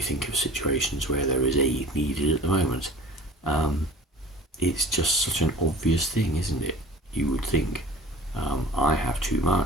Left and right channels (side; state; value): both; normal; correlation 0.43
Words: of situations where there is aid needed at the moment, it's just such an obvious thing, isn't it? You would think, I have too